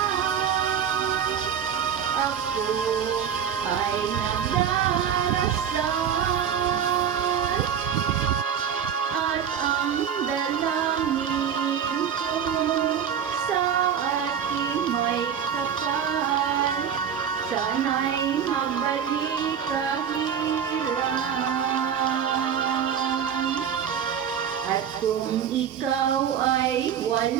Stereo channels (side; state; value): left; quieter; 8.1 dB